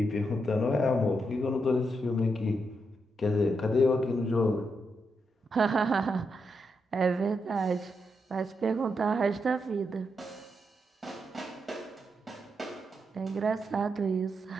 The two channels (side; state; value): both; normal; correlation 0.82